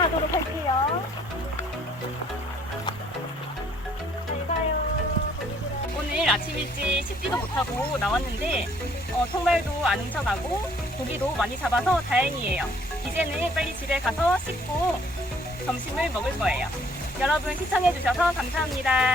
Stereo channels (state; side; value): normal; both; correlation 0.62